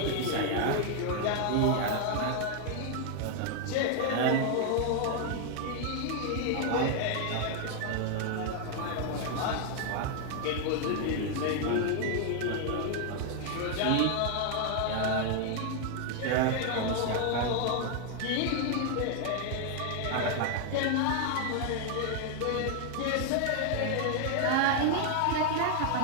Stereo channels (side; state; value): both; different; correlation 0.00